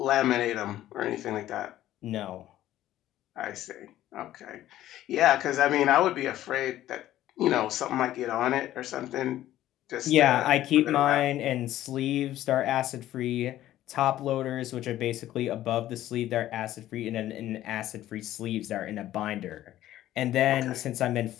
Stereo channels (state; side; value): quieter; right; 13.6 dB